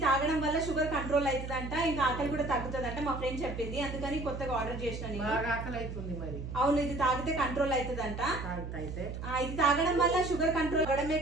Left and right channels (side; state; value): right; noise; hum, 7 dB below the sound